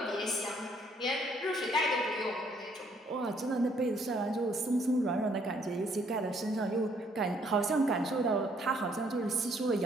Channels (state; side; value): normal; both; correlation 0.66